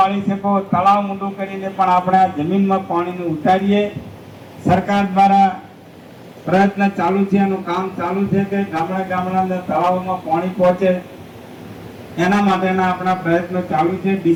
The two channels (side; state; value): both; identical; correlation 1.00